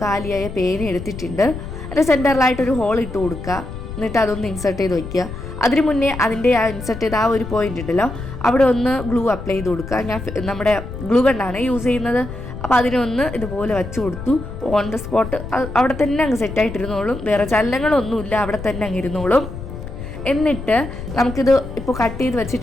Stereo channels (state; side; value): noise; left; rumble, 10 dB below the sound